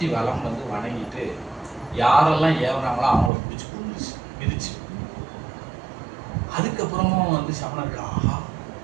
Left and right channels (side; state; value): left; drops out; at 3.3 s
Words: வலம் வந்து வணங்கிட்டு யாரெல்லாம் ஏவனாங்களோ அவங்கள பிடிச்சி கொண்டுச்சு, மிதிச்சு. அதுக்கப்புறமும் வந்து சமணர்கள் ஆஹா